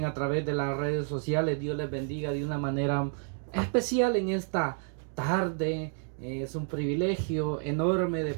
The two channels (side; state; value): left; silent; 58 dB below the other